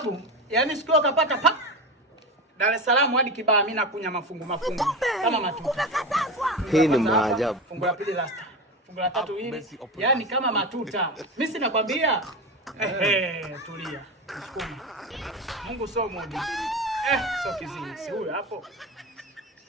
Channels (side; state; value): both; normal; correlation 0.23